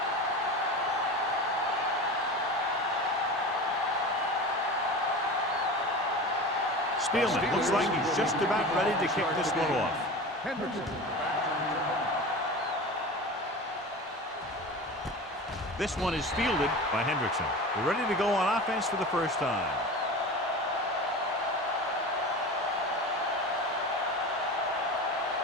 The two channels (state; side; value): normal; both; correlation 0.31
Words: Spielman looks like he's just about ready to kick this one off. This one is fielded by Hendrickson. They're ready to go on offense for the first time.